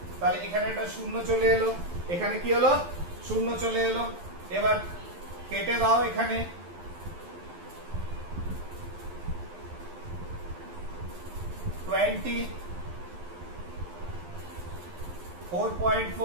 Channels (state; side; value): late; left; 12 ms